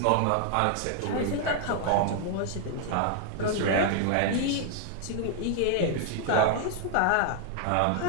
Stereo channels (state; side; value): different; both; correlation 0.00